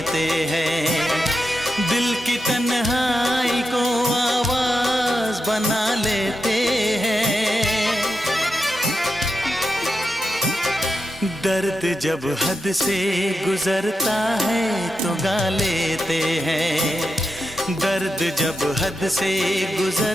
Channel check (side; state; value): both; normal; correlation 0.87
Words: हैं। दिल की तन्हाई को आवाज बना लेते हैं। दर्द जब हद से गुजरता है तो गा लेते हैं। दर्द जब हद से